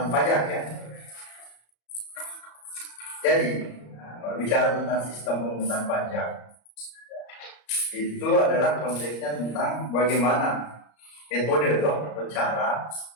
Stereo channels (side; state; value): right; late; 34 ms